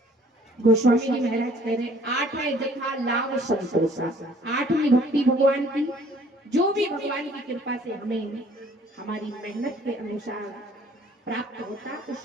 गोस्वामी जी महाराज कह रहे, आठ है जथा लाभ संतोषा। आठवीं भक्ति भगवान की, जो भी भगवान की कृपा से हमें हमारी मेहनत के अनुसार प्राप्त होता,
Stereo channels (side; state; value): both; normal; correlation 0.56